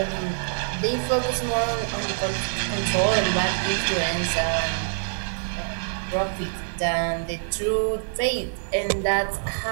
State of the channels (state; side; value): silent; left; 57 dB below the other